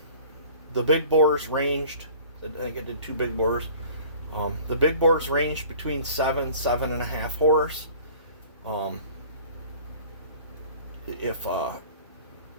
the big bores ranged. I think I did 2 big bores. The big bores ranged between 7.5 horse. If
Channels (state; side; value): inverted; both; correlation -0.47